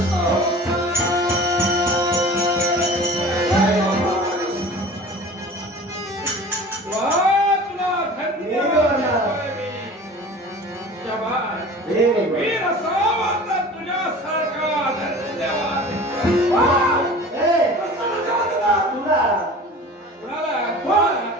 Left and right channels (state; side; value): normal; both; correlation 0.41